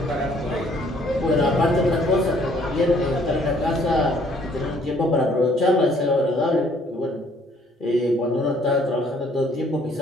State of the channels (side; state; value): both; normal; correlation 0.62